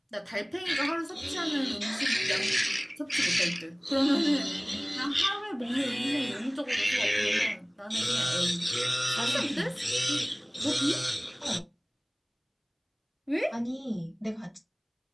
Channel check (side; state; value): both; identical; correlation 1.00